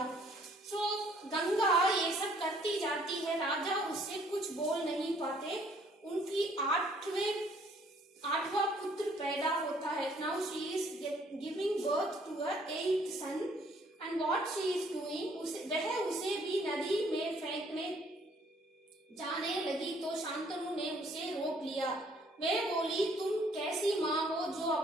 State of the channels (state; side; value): normal; both; correlation 0.62